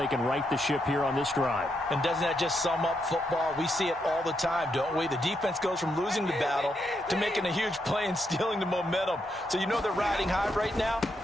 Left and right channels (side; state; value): both; normal; correlation 0.80